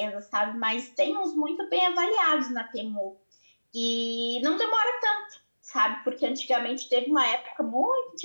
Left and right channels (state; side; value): inverted; both; correlation -1.00